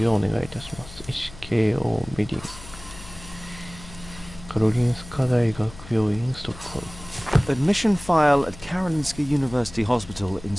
ようお願いいたします。SKO メディンカロリンスカ大学病院ストックホルム Admission file at Karolinska University Hospital in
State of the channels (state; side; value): noise; left; hum, 17 dB below the sound